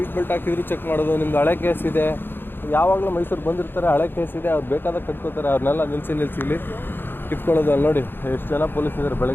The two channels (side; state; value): right; late; 0.10 ms